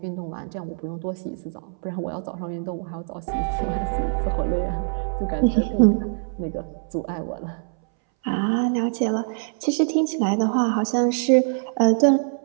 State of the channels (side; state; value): left; silent; 62 dB below the other